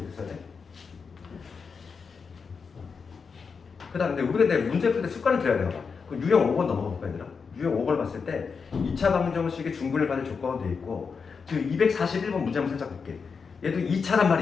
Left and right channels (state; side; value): quieter; right; 5.5 dB